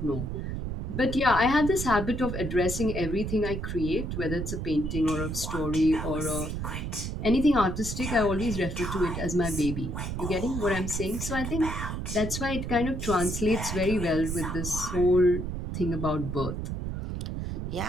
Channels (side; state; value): right; noise; rumble, 4 dB below the sound